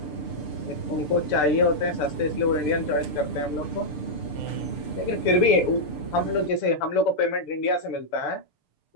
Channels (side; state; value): right; late; 6.8 ms